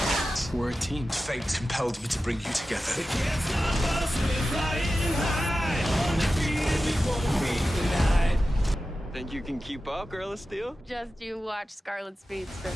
We're a team. Fate compelled me to bring you together. Think you can keep up, Girl of Steel? Just you watch Scarlet Speedster.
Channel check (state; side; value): normal; both; correlation 0.93